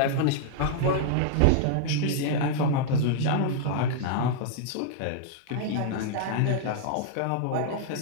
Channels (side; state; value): both; different; correlation -0.01